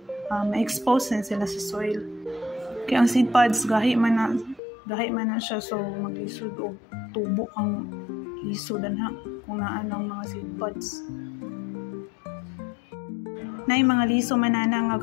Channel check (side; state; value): right; drops out; at 4.6 s